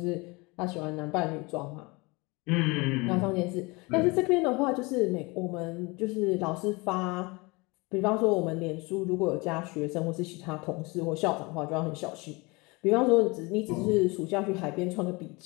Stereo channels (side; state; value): right; quieter; 25.9 dB